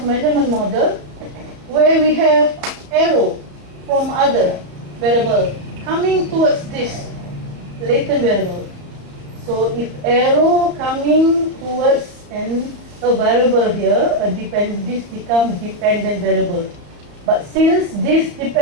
measurement model where we have arrow from other variable coming towards this latent variable. So if arrow coming towards a variable here, this becomes dependent variable. But since this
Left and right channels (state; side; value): late; left; 35 ms